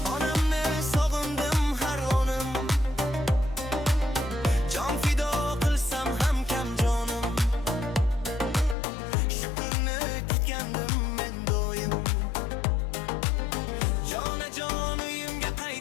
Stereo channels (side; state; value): right; drops out; at 8.8 s